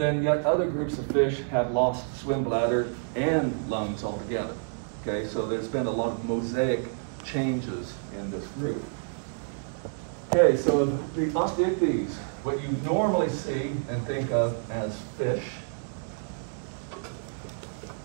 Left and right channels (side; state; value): left; silent; 59 dB below the other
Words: yet other groups of fish have lost swim bladder and lungs altogether. Okay, so there's been a lot of mosaic changes in this group. Okay, so the osteichthyes, what you normally see and think of as fish,